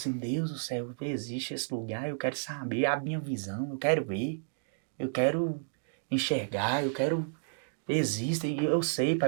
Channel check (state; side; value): silent; left; digital silence